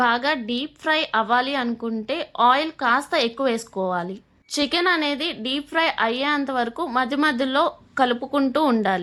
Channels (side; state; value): both; identical; correlation 1.00